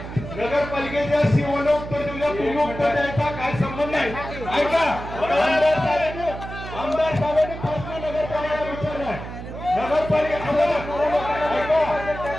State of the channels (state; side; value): noise; right; hum, 10 dB below the sound